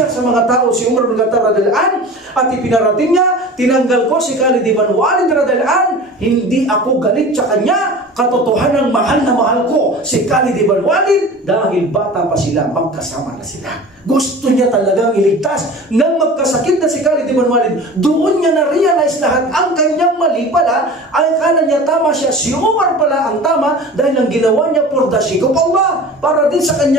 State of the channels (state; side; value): normal; both; correlation 0.37